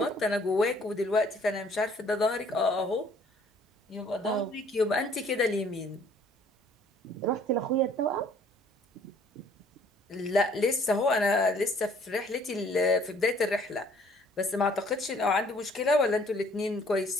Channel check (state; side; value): normal; both; correlation 0.58